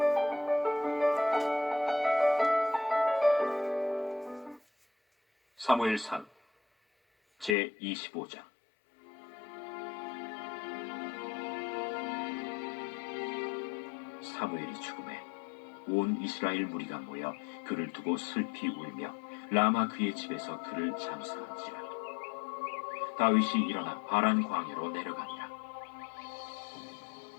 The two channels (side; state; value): right; drops out; at 7.6 s